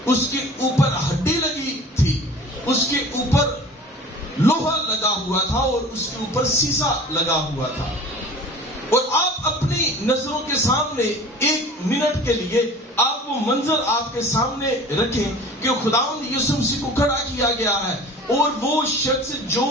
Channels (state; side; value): normal; both; correlation 0.42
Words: اس کے اوپر ہڈی لگی تھی، اس کے اوپر لوہا لگا ہوا تھا اور اس کے اوپر سیسا لگا ہوا تھا. اور آپ اپنی نظروں کے سامنے ایک منٹ کے لیے آپ وہ منظر آپ کے سامنے رکھیں کہ خداوند یسوع مسیح کو کھڑا کیا گیا ہے، اور وہ شخص جو